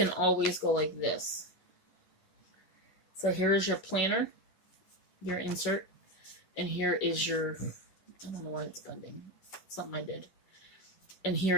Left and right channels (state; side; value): late; right; 11 ms